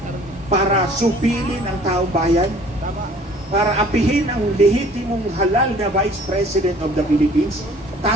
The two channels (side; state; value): both; normal; correlation 0.52